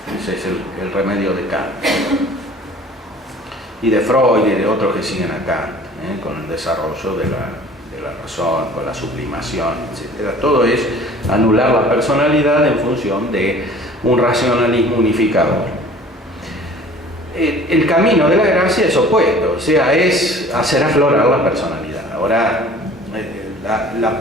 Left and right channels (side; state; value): both; normal; correlation 0.48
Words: Ese es el remedio de Kant. Y de Freud y de otros que siguen a Kant, con el desarrollo de la razón, con la sublimación, etc. Todo es anular la personalidad en función de un racionalismo unificador. El camino de la gracia es opuesto, o sea, es hacer aflorar la personalidad. Ahora, la